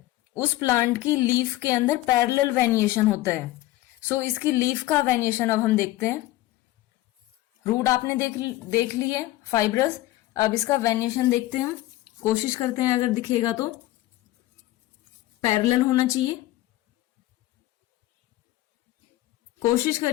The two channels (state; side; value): quieter; right; 16.5 dB